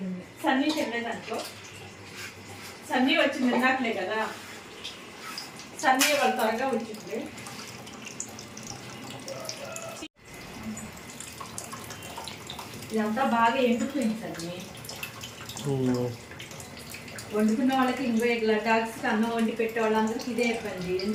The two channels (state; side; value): identical; both; correlation 1.00